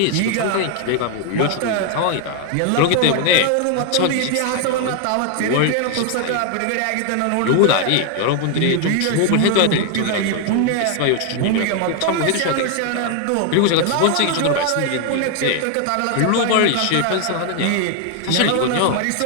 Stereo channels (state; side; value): different; both; correlation 0.00